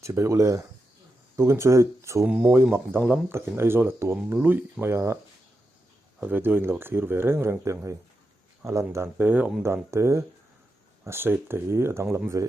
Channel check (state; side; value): normal; both; correlation 0.87